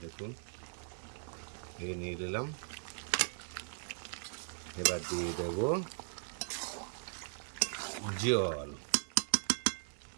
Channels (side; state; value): left; silent; digital silence